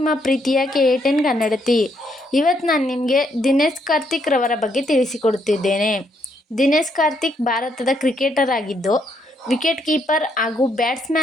ಪ್ರೀತಿಯ KA10 ಕನ್ನಡತಿ. ಇವತ್ತು ನಾನು ನಿಮಗೆ ದಿನೇಶ್ ಕಾರ್ತಿಕ್ ರವರ ಬಗ್ಗೆ ತಿಳಿಸಿಕೊಡುತ್ತಿದ್ದೇನೆ. ದಿನೇಶ್ ಕಾರ್ತಿಕ್ ಭಾರತದ ಕ್ರಿಕೆಟರ್ ಆಗಿದ್ದು, ವಿಕೆಟ್ ಕೀಪರ್ ಹಾಗೂ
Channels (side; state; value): both; normal; correlation 0.74